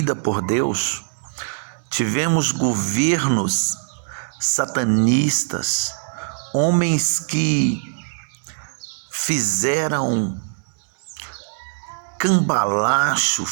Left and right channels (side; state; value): left; silent; digital silence